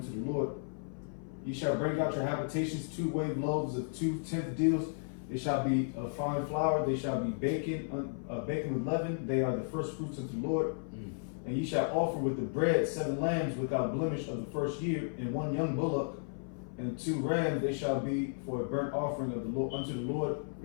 to the Lord. Ye shall bring out your habitations 2 wave loaves of 2 tenth deals. They shall be of fine flour. They shall be baken with leaven. They are the first fruits unto the Lord. And ye shall offer with the bread 7 lambs without blemish of the first year, and 1 young bullock, and 2 rams. They shall be for a burnt offering of the Lord unto the Lord.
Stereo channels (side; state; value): right; silent; 55 dB below the other